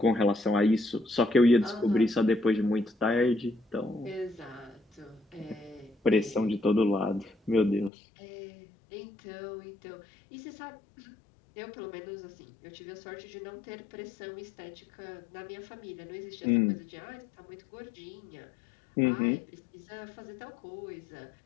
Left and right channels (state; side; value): drops out; right; at 7.9 s